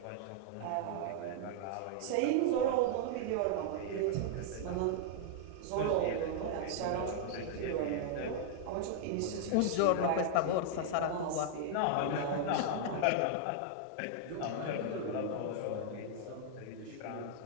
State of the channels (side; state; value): both; different; correlation -0.01